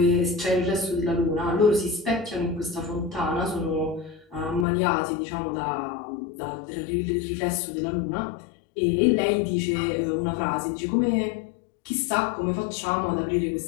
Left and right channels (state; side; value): drops out; right; at 4.7 s